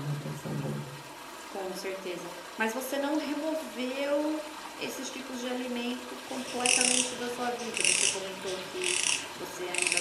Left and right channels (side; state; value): both; identical; correlation 1.00